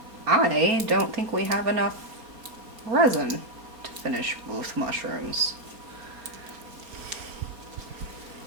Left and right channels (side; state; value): left; late; 4.2 ms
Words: I don't think we have enough resin to finish both mushrooms.